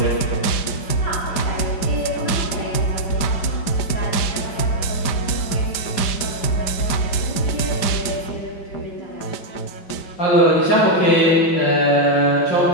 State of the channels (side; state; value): right; late; 5.1 ms